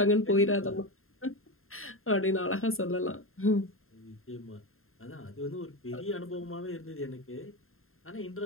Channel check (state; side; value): late; right; 0.61 ms